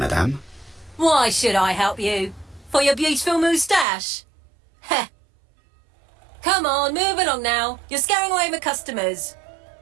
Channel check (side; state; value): left; drops out; at 3.9 s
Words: Why should I help you? For your beautiful moustache? Heh. Come on, move along now. You're scaring away my customers.